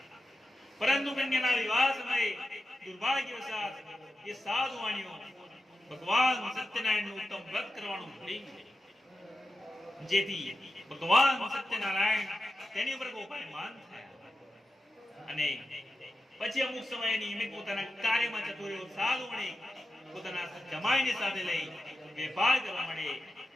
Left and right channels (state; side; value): normal; both; correlation 0.90